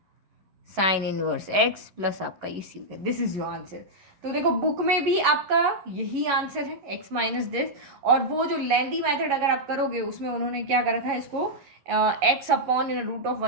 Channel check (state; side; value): late; left; 11 ms